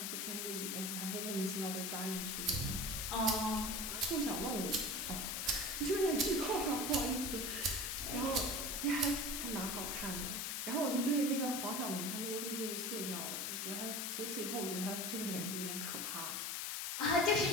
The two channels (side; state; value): left; noise; hiss, 1 dB below the sound